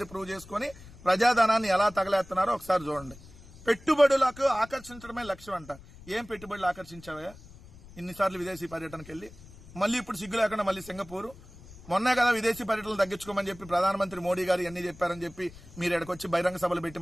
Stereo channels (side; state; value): left; noise; rumble, 20 dB below the sound